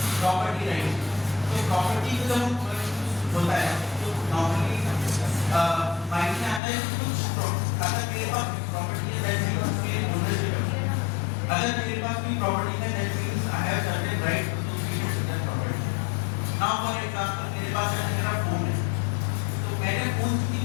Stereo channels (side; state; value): right; drops out; at 6.6 s